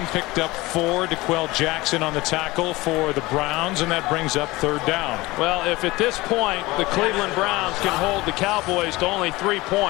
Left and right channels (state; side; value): quieter; right; 20.7 dB